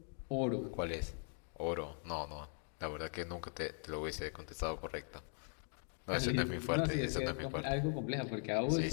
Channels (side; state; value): right; silent; 51 dB below the other